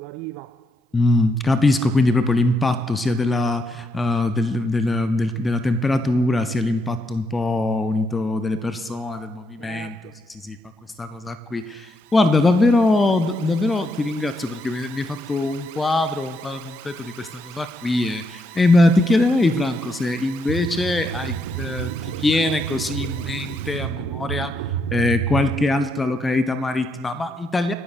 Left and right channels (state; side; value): normal; both; correlation 0.78